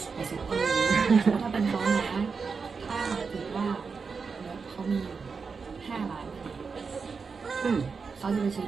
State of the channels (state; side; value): quieter; left; 5.2 dB